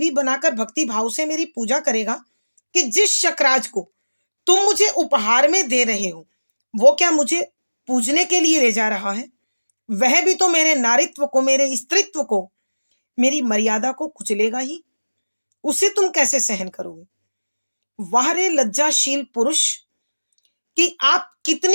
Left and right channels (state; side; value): inverted; both; correlation -1.00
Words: बनाकर भक्ति भाव से मेरी पूजा करेगा, कि जिस शकराज को तुम मुझे उपहार में दे रहे हो वो क्या मुझे पूजने के लिए ले जा रहा है? वह भी तो मेरे नारित्व को, मेरे स्त्रीत्व को, मेरी मर्यादा को कुचलेगा ही। उसे तुम कैसे सहन करोगे? वाह रे लज्जाशील पुरुष, कि आप